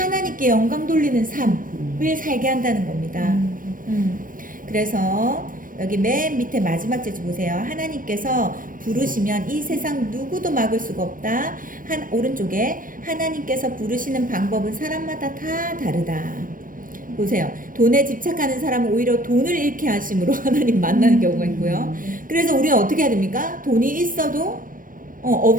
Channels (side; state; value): left; late; 0.40 ms